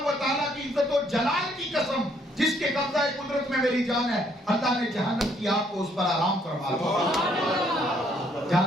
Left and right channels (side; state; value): both; normal; correlation 0.67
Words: و تعالیٰ کی عزت و جلال کی قسم جس کے قبضہ قدرت میں میری جان ہے، اللہ نے جہنم کی آگ کو اس پر آرام فرما دیا،